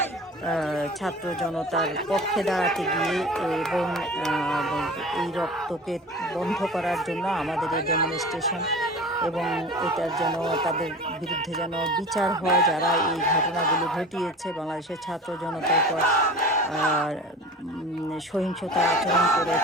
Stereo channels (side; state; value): both; normal; correlation 0.37